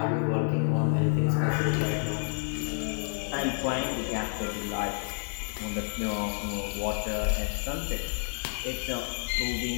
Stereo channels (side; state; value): right; silent; 58 dB below the other